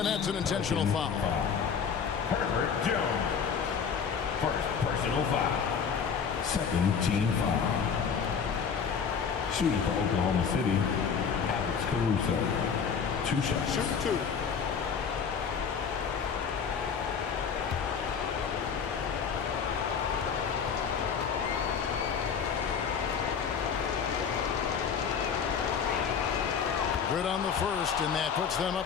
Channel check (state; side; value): quieter; right; 6.6 dB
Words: that's an intentional foul. Herbert Jones. First personal foul. Second team foul. Shooting for Oklahoma City, Alex Caruso. 2 shots. Shoot 2. Good on the first, and that puts them